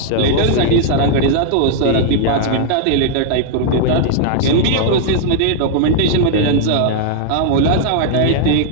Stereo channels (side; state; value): both; different; correlation -0.01